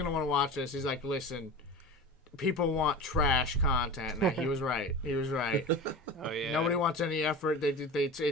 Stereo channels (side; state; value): both; normal; correlation 0.31